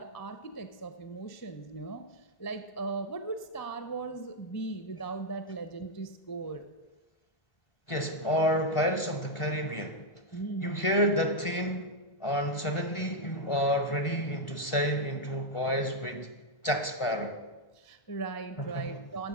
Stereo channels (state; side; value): late; right; 1.4 ms